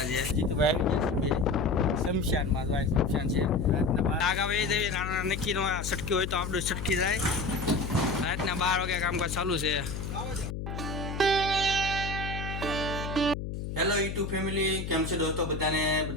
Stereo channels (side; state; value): left; noise; hum, 5 dB below the sound